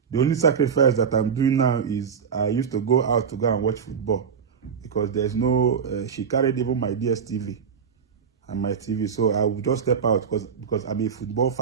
The only sacrifice that I'm doing now is I used to go out to go and watch football because there's no, she carried even my DSTV and my TV. So I would just step out because I'm a football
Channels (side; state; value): left; quieter; 6.8 dB